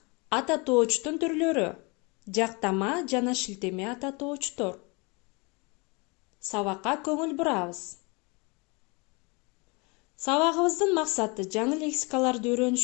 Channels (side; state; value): right; quieter; 29.2 dB